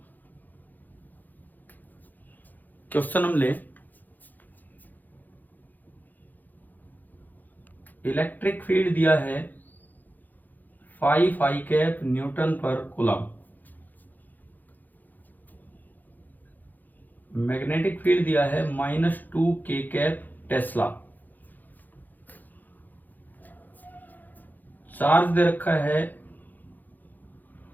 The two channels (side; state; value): right; late; 0.085 ms